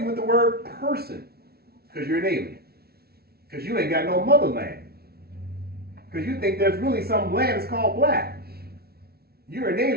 with the word person because you're an alien. Because you ain't got no motherland. Because you think there's really some land that's called black. You're an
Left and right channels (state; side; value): late; left; 0.45 ms